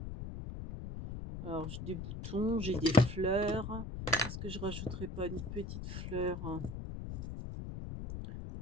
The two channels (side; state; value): left; noise; rumble, 7 dB below the sound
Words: Alors, j'ai des boutons, j'ai des fleurs. Est-ce que je rajouterai pas une petite fleur?